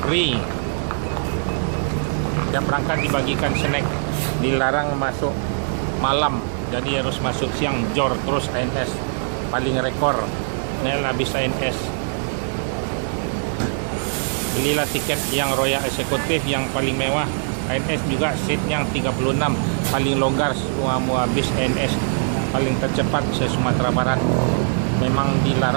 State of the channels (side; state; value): left; silent; 57 dB below the other